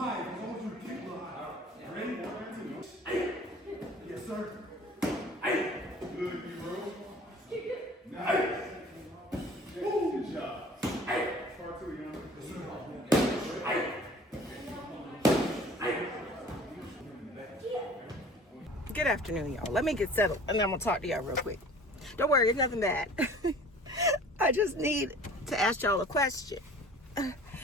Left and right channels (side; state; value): both; normal; correlation 0.47